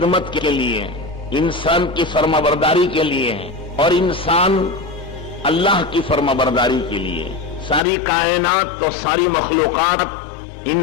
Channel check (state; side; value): drops out; right; at 7.8 s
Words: کے لیے، انسان کی فرمانبرداری کے لیے اور انسان اللہ کی فرمانبرداری کے لیے۔ ساری کائنات اور ساری مخلوقات